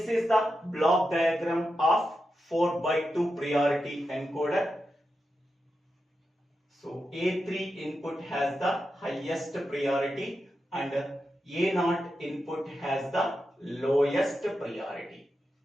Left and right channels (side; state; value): both; normal; correlation 0.89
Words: is the block diagram of 4x2 priority encoder. So A3 input has the highest priority and A0 input has the lowest priority.